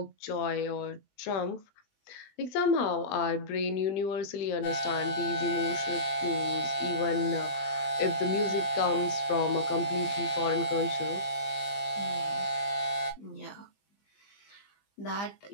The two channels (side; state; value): right; late; 20 ms